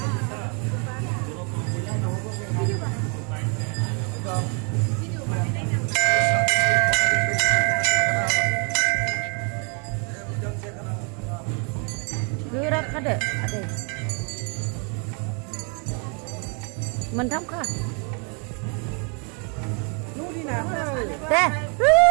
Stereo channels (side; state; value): left; quieter; 37.0 dB